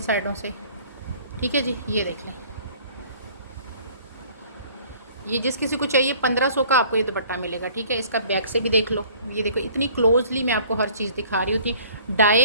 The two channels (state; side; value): inverted; both; correlation -0.53